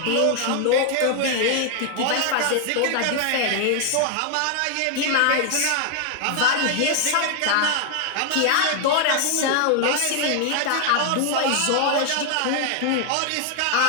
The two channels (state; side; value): different; both; correlation 0.00